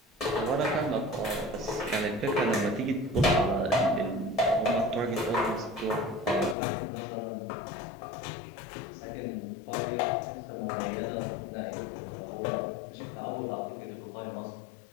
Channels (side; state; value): right; drops out; at 6.6 s